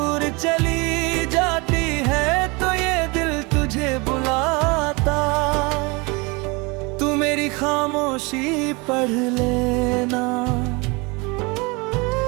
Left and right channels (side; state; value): left; quieter; 27.4 dB